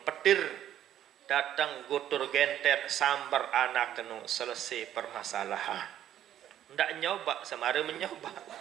petir, datang gutur genter sambar anak kenu selesai permasalahan. Ndak nyoba semara menyoba.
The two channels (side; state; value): left; quieter; 11.3 dB